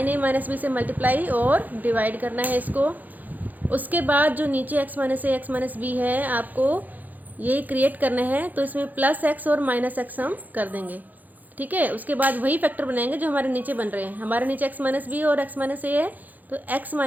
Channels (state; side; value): late; left; 0.083 ms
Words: ए माइनस बी से मल्टीप्लाई और डिवाइड करना है इसको। उसके बाद जो नीचे एक्स माइनस ए एक्स माइनस बी है आपको ये क्रिएट करना है, तो इसमें प्लस एक्स और माइनस एक्स हम कर देंगे। ठीक है, उसके बाद वही फैक्टर बनाएंगे जो हमारे नीचे बन रहे हैं। हमारे नीचे एक्स माइनस बी और एक्स माइनस ए है, तो एक्स